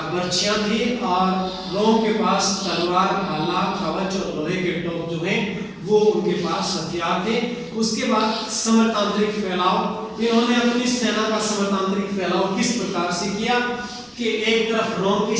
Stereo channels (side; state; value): both; identical; correlation 1.00